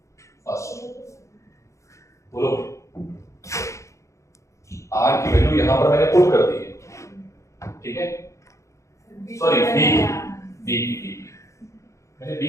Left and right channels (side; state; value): right; late; 0.15 ms